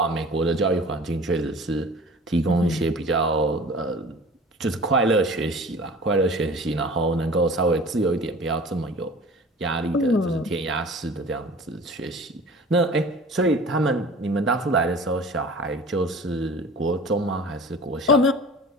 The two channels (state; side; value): normal; both; correlation 0.42